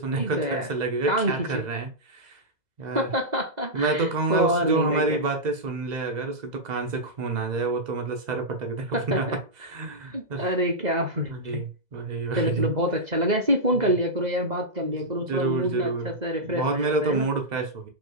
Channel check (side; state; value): left; late; 2.0 ms